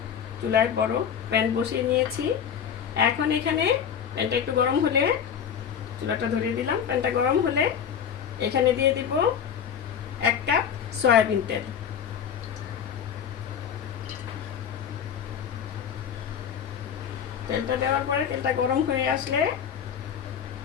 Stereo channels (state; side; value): quieter; right; 8.0 dB